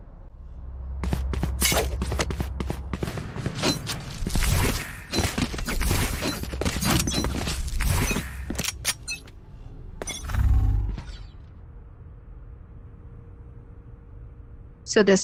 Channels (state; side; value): identical; both; correlation 1.00